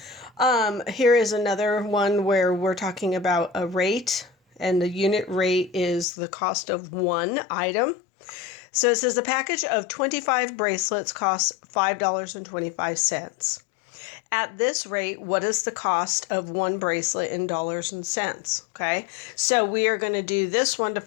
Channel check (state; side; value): drops out; right; at 6.1 s